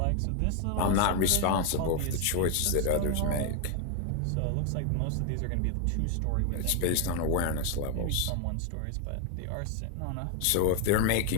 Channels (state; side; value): different; both; correlation 0.01